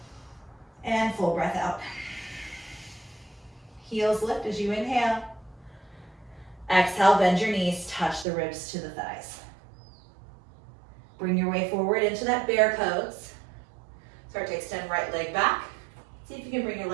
And full breath out. Heels lift as you inhale. Exhale, bend your knees, touch the ribs to the thighs. Bring your way forward into that bear pose. Start to extend right leg back. See if you can bring your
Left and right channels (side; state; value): left; drops out; at 8.2 s